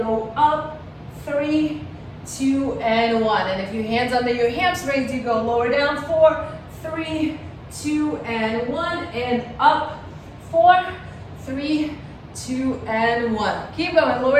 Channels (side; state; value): both; identical; correlation 1.00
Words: up, 3, 2, and 1. And if your hands under your hamstrings, you go lower down 4, 3, 2, and 1, and up 4, 3, 2, and 1. Keep going,